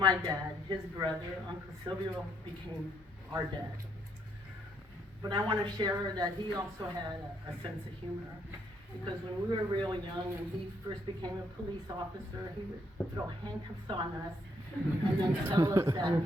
dad, his brother, Uncle Silvio, became our dad. But I want to share that he also had a sense of humor, because when we were real young and he first became a police officer, he would throw handcuffs on us and then tell us that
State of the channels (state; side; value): normal; both; correlation 0.71